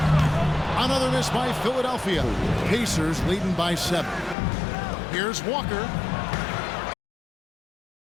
Another miss by Philadelphia. Pacers leading by 7. Here's Walker.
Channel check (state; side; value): drops out; right; at 4.4 s